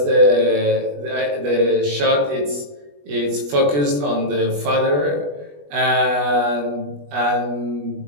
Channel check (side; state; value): left; late; 20 ms